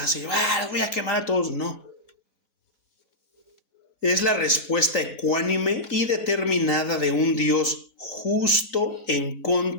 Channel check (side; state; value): right; late; 4.0 ms